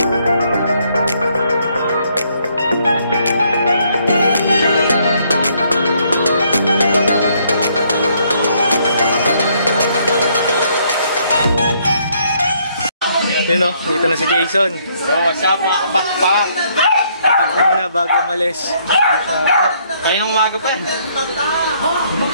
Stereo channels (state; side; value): inverted; both; correlation -0.68